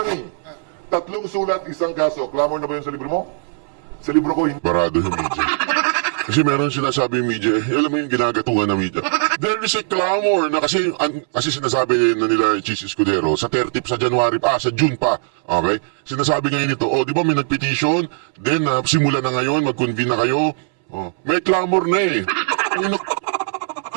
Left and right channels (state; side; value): silent; left; 66 dB below the other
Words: eh. 3 sulat, 1 kaso. Clamor na ba yun sa libro mo? Sa libro ko, hindi. Barado yung media. Kasi meron sinasabi yung media, alam mo yung ginagatungan ng media. There is a clamor na kasi sinasabi na nila Chis Escudero sa 30 sa June pa. Okay? Sinasabi ngayon ito, di ba may nagpetition? Then, simula na ngayon, mag-convene na kayo. May clamor na eh.